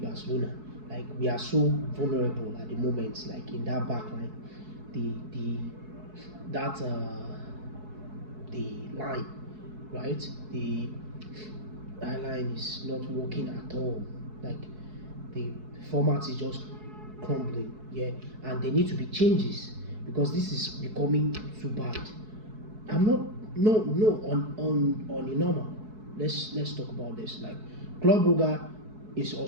Like we are so vulnerable at the moment. Like in that back line, the that the line, right? The line is not working at all. Like the format is just crumbling. Yeah, and there need to be changes because this is becoming too bad. I'm not no on the normal. Let's talk about this. Like Club Brugge is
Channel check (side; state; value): left; late; 4.7 ms